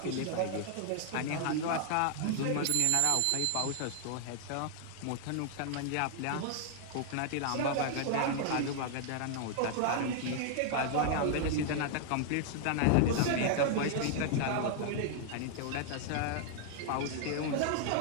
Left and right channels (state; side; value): different; both; correlation 0.00